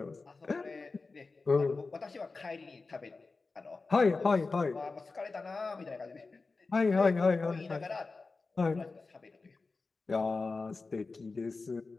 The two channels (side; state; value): right; quieter; 3.9 dB